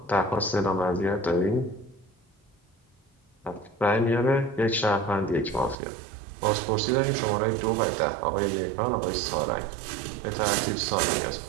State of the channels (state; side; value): drops out; left; at 5.8 s